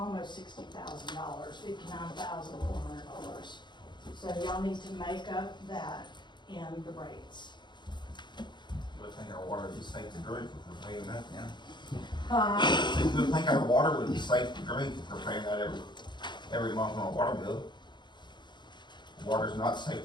$60,000, $59,400. So y'all need to make up that in the rates. Would think our water is safe to drink if we're paying that now. You would think our water would be safe to drink if we're paying that every month on a water bill. Water's not safe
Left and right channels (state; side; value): late; right; 0.22 ms